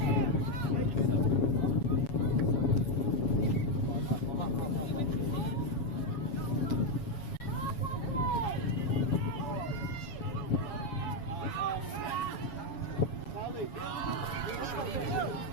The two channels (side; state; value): right; late; 7.2 ms